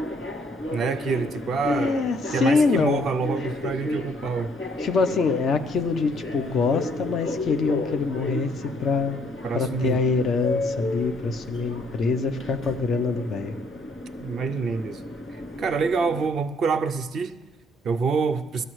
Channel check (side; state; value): both; normal; correlation 0.65